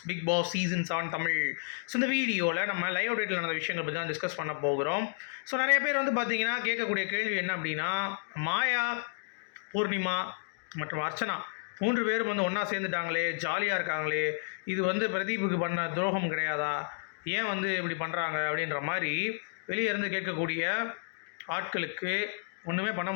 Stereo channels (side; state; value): right; silent; digital silence